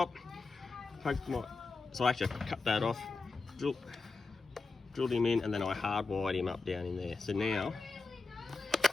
so I actually cut that off, drilled him in, and then I hardwired him up down in there. So now,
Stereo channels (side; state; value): right; quieter; 3.9 dB